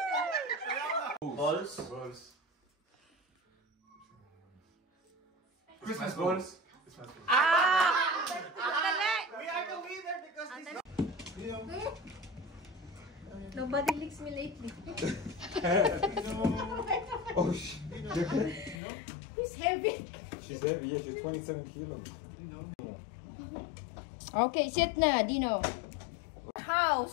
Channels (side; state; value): right; drops out; at 18.8 s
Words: first goals. We are the winner because this Nobody licks me lately. Oh shit. Who's heavy? She's heavy, yeah, she's 27 kilos. Okay, sit na, Dino.